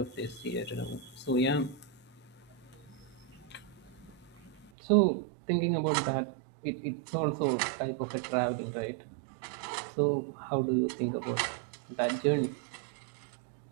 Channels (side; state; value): left; drops out; at 4.7 s